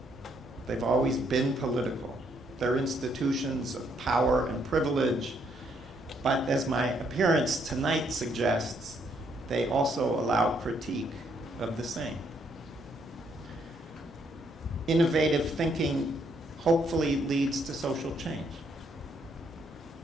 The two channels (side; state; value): both; normal; correlation 0.71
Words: They've always been political. They're institutions of power and privilege, but as my appearance tonight suggests, they also allow critique of the same. Innovative thinking hopefully leads to social change.